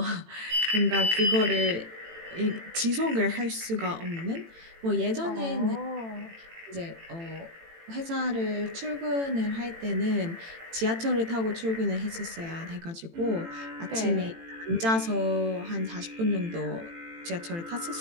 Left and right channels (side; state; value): left; late; 18 ms